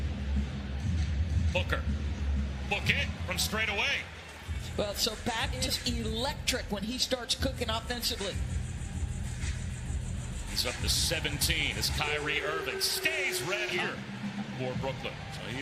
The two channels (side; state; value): both; identical; correlation 1.00